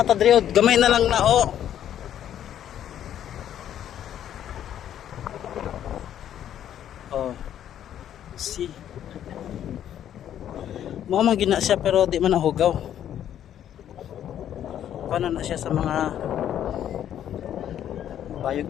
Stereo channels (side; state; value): right; quieter; 10.5 dB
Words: ta diri, gamay na lang na oh. Oh. See. Mo man gina siya pero di man nahugaw. Paano na siya sa mga